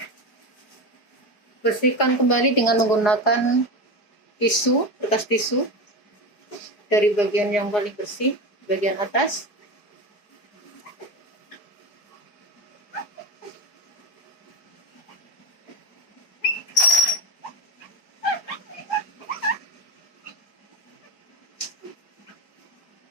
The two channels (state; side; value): late; right; 4.8 ms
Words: Bersihkan kembali dengan menggunakan tisu, kertas tisu dari bagian yang paling bersih, bagian atas.